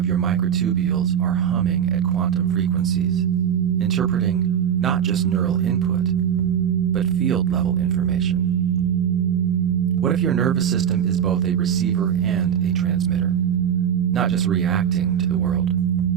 your microtubules are humming at quantum frequencies, interpreting not just neural input, but field-level information? What if your nervous system is both a receiver and a transmitter, not just reacting to the world,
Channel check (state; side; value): quieter; left; 8.7 dB